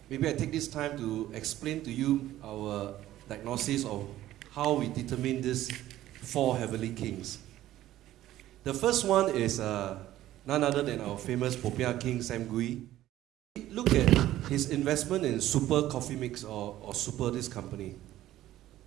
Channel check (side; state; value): left; quieter; 14.1 dB